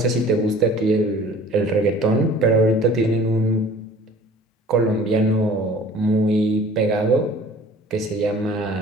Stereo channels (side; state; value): both; normal; correlation 0.48